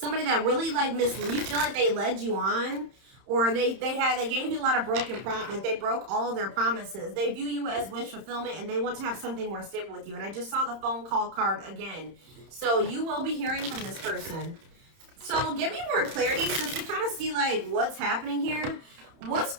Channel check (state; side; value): late; left; 31 ms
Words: that really like you feel like they led you on, or they gave you a lot of broken promises. They broke all of their promises. They view you as wish fulfillment, and they want to have something more stable with you. And I just saw the phone call card again. So you will be hearing from this person. So give me more clarity, since we kind of see like what's happening here. What's